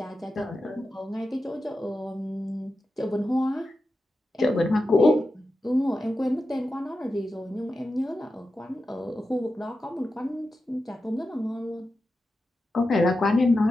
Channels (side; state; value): both; normal; correlation 0.91